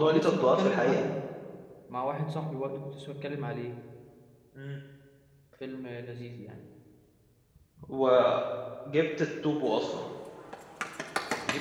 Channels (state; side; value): identical; both; correlation 1.00